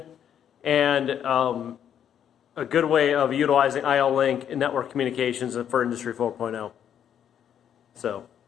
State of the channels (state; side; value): quieter; right; 9.2 dB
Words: and a good way of utilizing IO-Link and network communications for Industry 4.0. So,